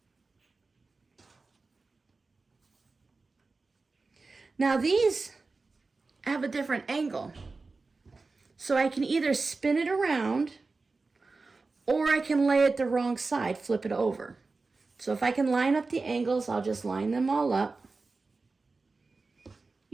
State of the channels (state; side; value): quieter; left; 3.9 dB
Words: Now these have a different angle. So I can either spin it around or I can lay it the wrong side, flip it over. So if I can line up the angles, I'll just line them all up.